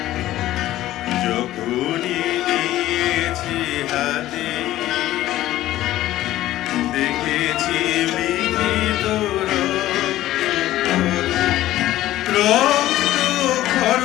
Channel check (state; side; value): quieter; right; 14.6 dB